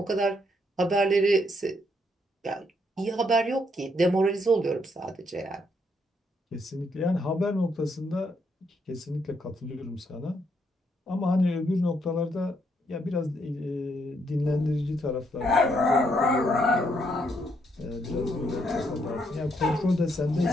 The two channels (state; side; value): normal; both; correlation 0.74